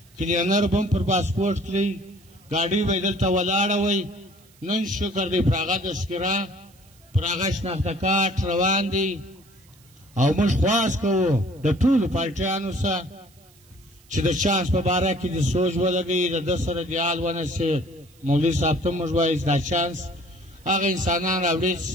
کلینر به هم پر پاسپورټ کړي ګاډۍ به یې دلته ولاړه وی نن شکر دی پر هغه تذکره پر هغه شناخته کارت روان دی او موږ خواست کوو د ټولو پارټیانو سره چې د چانس په باره کې د سوچ ولګوي د ده سره دیال ونسي مولوي صاحب ته موږ وایو دا چانس هغه انسانان راوړي چې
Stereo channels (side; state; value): right; noise; hiss, 29 dB below the sound